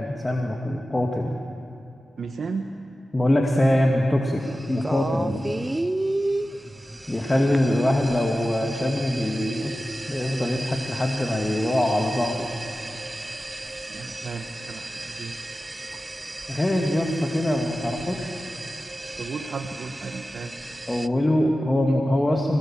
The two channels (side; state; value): both; normal; correlation 0.94